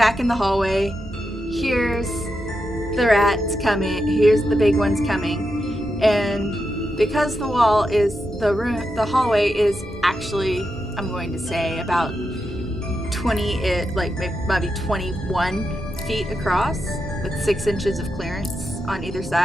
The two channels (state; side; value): normal; both; correlation 0.87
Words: in the hallway, hears the rats coming, hears the big ones coming, and because the hallway is actually, I'm going to say, about 20, maybe 21 feet across, with 6 inches of clearance on either